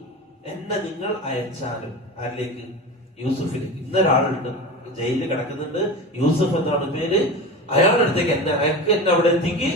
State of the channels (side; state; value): both; normal; correlation 0.28